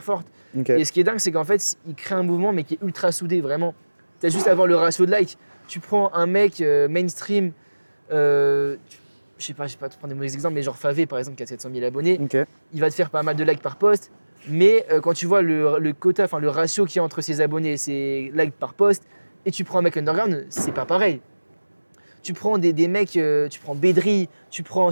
forte. Et ce qui est dingue, c'est qu'en fait, il crée un mouvement, mais qui est ultra soudé, vraiment. Tu as juste à voir le ratio de likes. Tu prends un mec mainstream, je sais pas te prendre des mauvais exemples, mais genre Favé par exemple qui a 700 000 abonnés, il va te faire pas mal de likes par post, mais quand tu vois le quota, enfin le ratio qu'il y a entre ses abonnés et ses likes par post, et tu prends un mec underground, c'est pas pareil. Tu prends des mecs, tu prends Bedri, tu prends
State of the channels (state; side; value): inverted; both; correlation -1.00